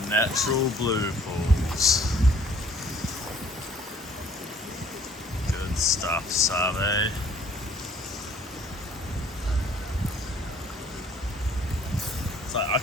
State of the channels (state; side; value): normal; both; correlation 0.56